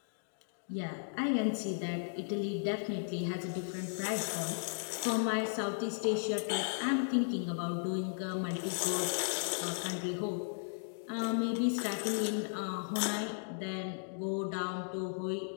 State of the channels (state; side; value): silent; right; digital silence